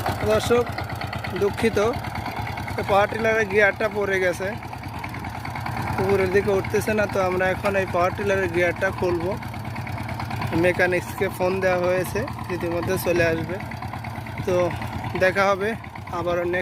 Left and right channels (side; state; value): both; identical; correlation 1.00